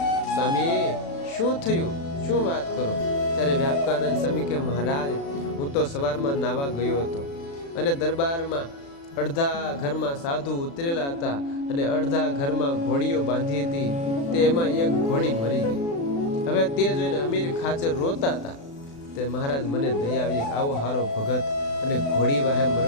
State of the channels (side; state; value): right; late; 36 ms